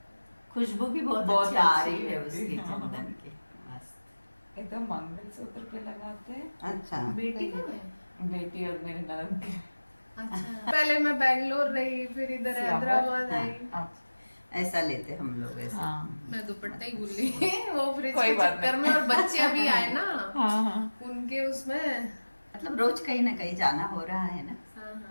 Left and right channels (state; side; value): inverted; both; correlation -1.00